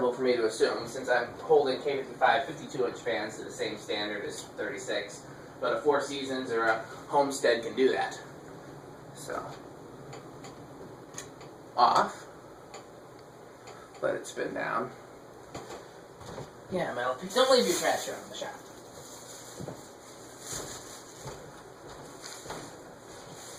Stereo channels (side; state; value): both; identical; correlation 1.00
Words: for me to assume since I'm holding K55 52-inch fans to the same standard as 36, but a Four Seasons or a Homestead can do that. So, off, let it spin down. Yeah, Metal Pete, don't leave your trash around the shop.